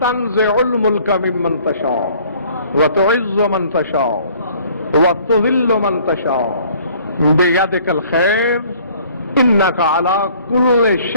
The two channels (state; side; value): inverted; both; correlation -0.56